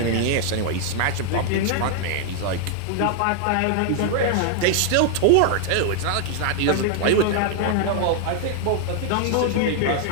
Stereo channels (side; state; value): both; different; correlation 0.00